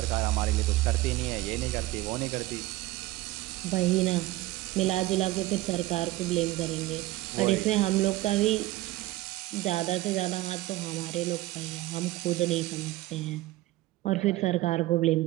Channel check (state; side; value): quieter; left; 17.5 dB